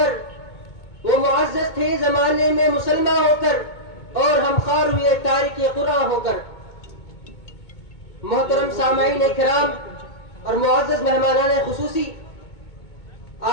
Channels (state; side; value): late; right; 2.2 ms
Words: کر اور ہم خوار ہوئے تارک قرآن ہو کر. محترم سامعین کرام اور معزز مہمانان خصوصی،